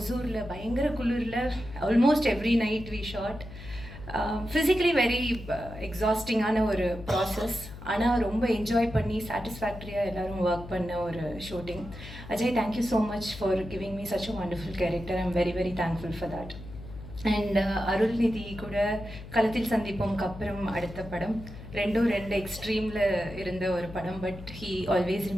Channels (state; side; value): noise; left; hum, 14 dB below the sound